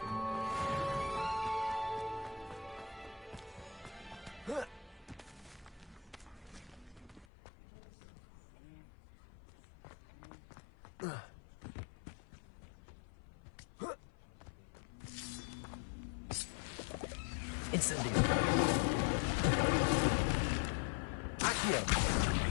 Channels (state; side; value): drops out; right; at 7.2 s